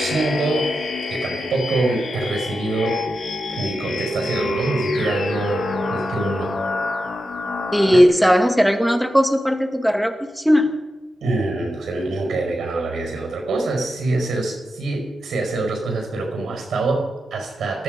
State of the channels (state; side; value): normal; both; correlation 0.90